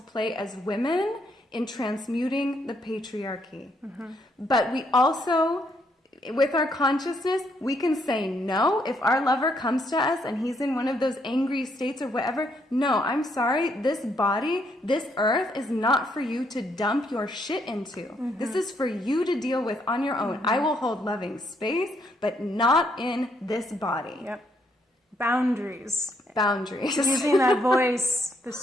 as women in transmuting the patriarchy. But we also, with our consciousness, we can say no. If our lover comes to us and he's in one of those angry states or whatever, no, I'm sorry, this body, this earth is not for you to dump your shit into. This is for you to deal with on your own. I will hold loving space, but not in this body. Yep. Boundaries. Using that voice, the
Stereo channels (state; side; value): normal; both; correlation 0.73